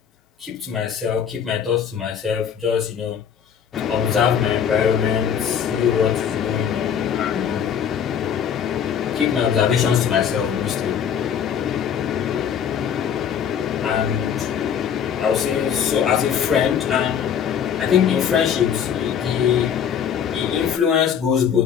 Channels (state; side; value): quieter; right; 8.1 dB